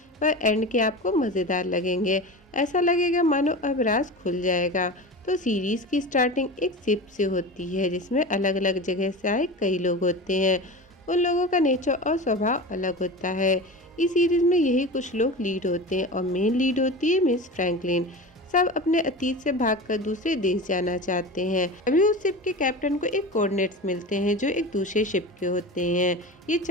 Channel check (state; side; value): normal; both; correlation 0.30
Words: पर एंड के आपको मज़ेदार लगेंगे। ऐसा लगेगा मानो अब राज खुल जाएगा। तो सीरीज़ की स्टार्टिंग एक शिप से होती है, जिसमें अलग अलग जगह से आए कई लोग होते हैं। उन लोगों का नेचर और स्वभाव अलग होता है। इस सीरीज़ में यही कुछ लोग लीड होते हैं और मेन लीड होती है मिस फ्रैंकलिन। सब अपने अतीत से भागकर दूसरे देश जाना चाहते हैं। अभी उस शिप के कैप्टन को एक कोऑर्डिनेट्स मिलते हैं जो एक दूसरे शिप के होते हैं। ये